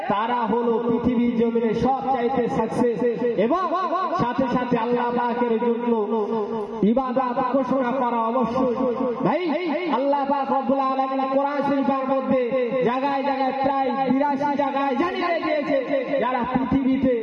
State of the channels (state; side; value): identical; both; correlation 1.00